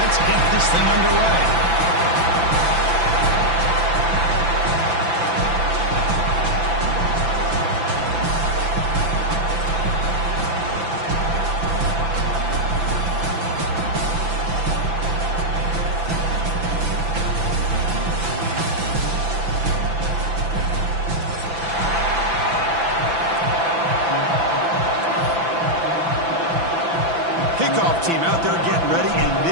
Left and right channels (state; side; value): late; left; 6.0 ms